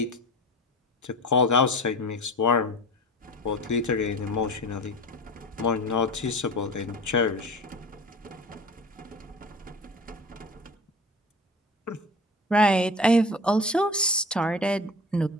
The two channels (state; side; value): normal; both; correlation 0.35